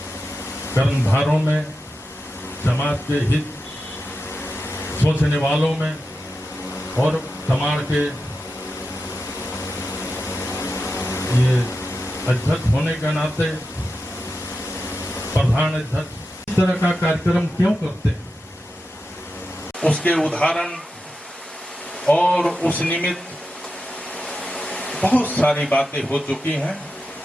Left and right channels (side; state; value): both; normal; correlation 0.90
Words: कर्मधारों में, समाज के हित सोचने वालों में और समाज के ये अध्यक्ष होने के नाते प्रधान अध्यक्ष इस तरह का कार्यक्रम क्यों करते हैं, उसके उदाहरण और उस निमित्त बहुत सारी बातें हो चुकी हैं।